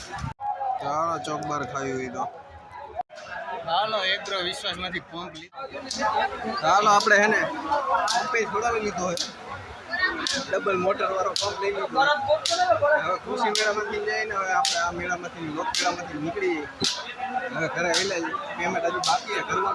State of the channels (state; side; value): identical; both; correlation 1.00